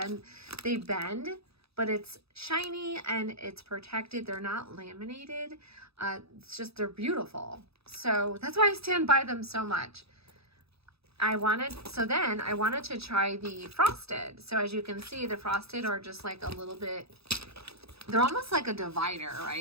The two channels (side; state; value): left; late; 0.78 ms